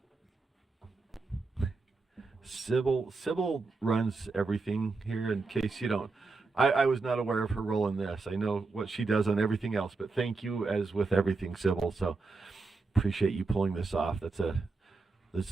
Sybil runs everything here, in case you don't. I was not aware of her role in this. I know what she does on everything else, but thank you as with everything, Sybil. So appreciate you pulling this off. This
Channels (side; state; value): left; quieter; 4.0 dB